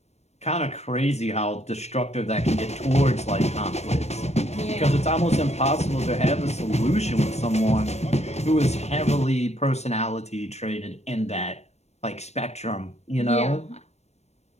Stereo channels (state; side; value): late; right; 0.31 ms